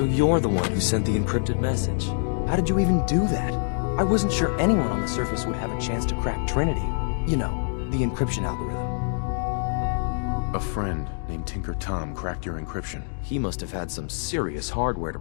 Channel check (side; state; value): right; silent; digital silence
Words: you're the one who sent the encrypted message. How did you even do that? I wasn't sure anyone on the surface would have a chance to crack Trinity. You know, the encryption algorithm. A friend named Tinker Tom cracked your encryption. He must have had some serious hardware to